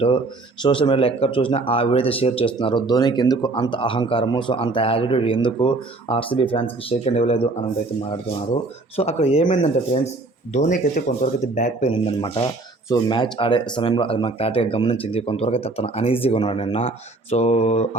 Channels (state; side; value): quieter; left; 3.2 dB